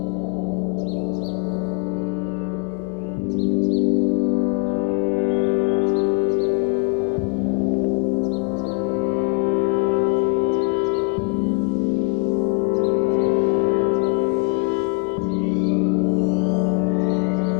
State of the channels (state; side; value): quieter; right; 35.2 dB